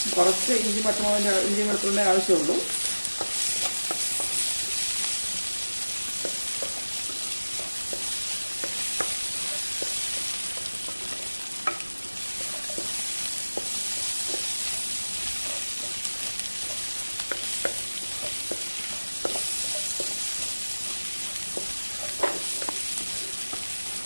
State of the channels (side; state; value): both; inverted; correlation -1.00